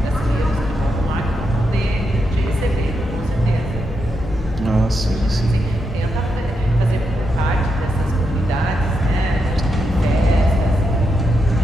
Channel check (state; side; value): normal; both; correlation 0.84